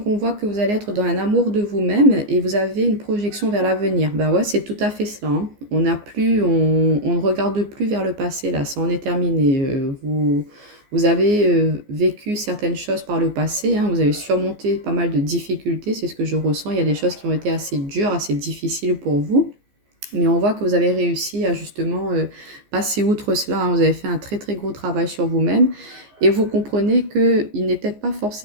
on voit que vous allez être dans un amour de vous-même et vous avez une projection vers l'avenir. Ben ouais, c'est tout à fait cela. On ne regarde plus vers le passé, là, ça en est terminé. Vous avez vécu certaines choses par le passé, vous avez surmonté pas mal de difficultés, c'est ce que je ressens. Il y a des choses qui ont été assez dures, assez difficiles pour vous. Mais on voit que vous avez réussi à justement passer outre cela. Vous avez fait un très très gros travail sur vous-même. Et vous comprenez qu'il n'est peut-être pas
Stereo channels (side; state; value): left; late; 14 ms